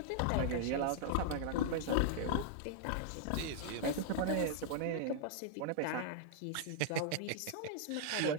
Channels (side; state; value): both; different; correlation -0.01